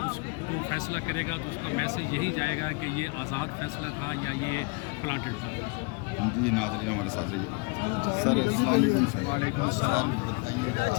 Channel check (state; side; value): quieter; right; 29.2 dB